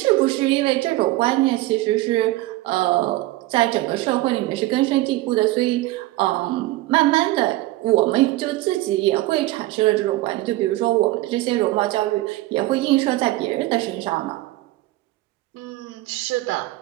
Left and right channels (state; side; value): quieter; left; 18.0 dB